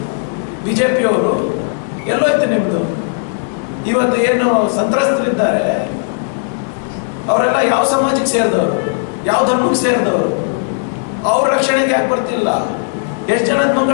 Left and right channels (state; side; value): silent; right; 69 dB below the other